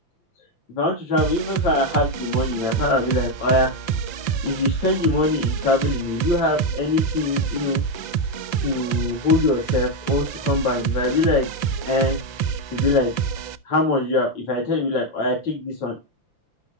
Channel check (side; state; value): right; late; 5.8 ms